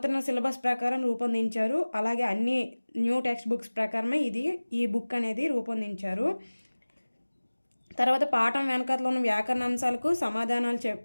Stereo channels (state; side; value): inverted; both; correlation -1.00